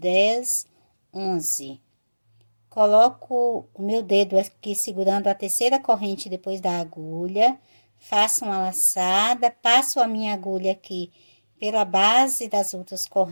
11. Coloco o meu dedo aqui segurando a terceira corrente depois da agulha, faço uma laçada, passo a minha agulha aqui pela base das outras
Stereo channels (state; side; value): inverted; both; correlation -1.00